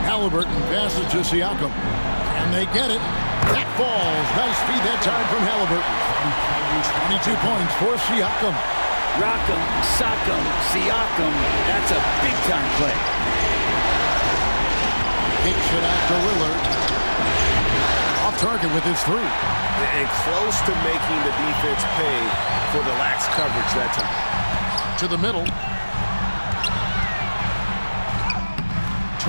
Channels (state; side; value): inverted; both; correlation -1.00